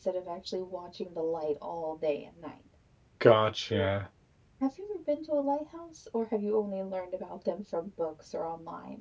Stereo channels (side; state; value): both; identical; correlation 1.00